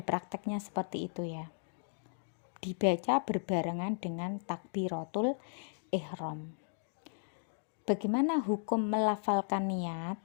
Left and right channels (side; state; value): right; silent; digital silence